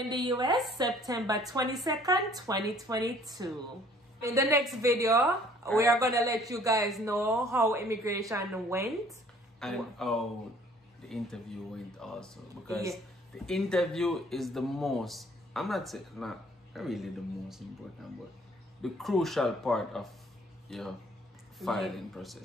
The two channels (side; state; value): both; normal; correlation 0.57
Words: the US September 22nd, 2022. In the next video, we are going to let you guys know how immigration went. And how the interview went also. Because the interview is the most, I'm not saying, not really the most important, but the crucial part of your filing